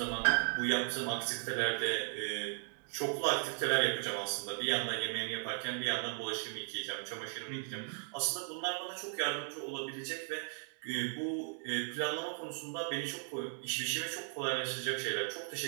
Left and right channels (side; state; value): left; silent; digital silence